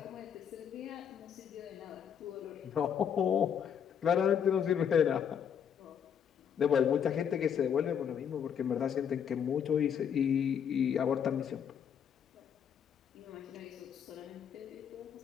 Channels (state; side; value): quieter; right; 8.2 dB